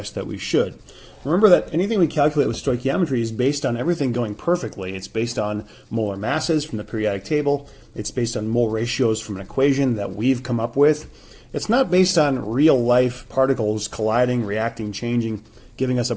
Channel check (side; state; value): both; identical; correlation 1.00